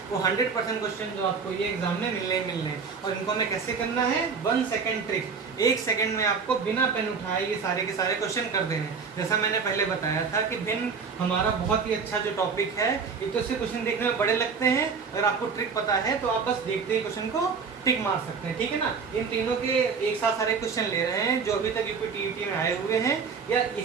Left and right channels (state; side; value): quieter; left; 5.5 dB